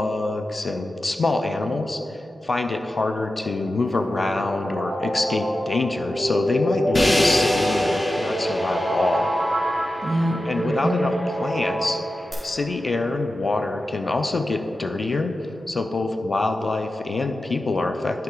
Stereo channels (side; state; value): both; normal; correlation 0.92